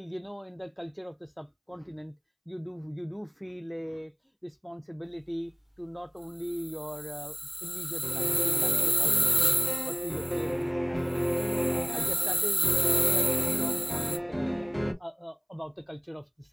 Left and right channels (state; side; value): identical; both; correlation 1.00